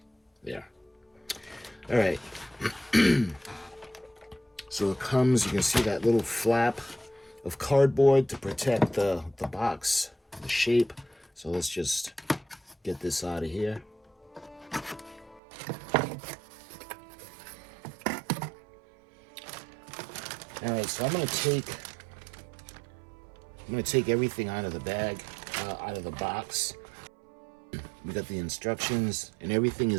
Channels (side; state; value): left; drops out; at 15.4 s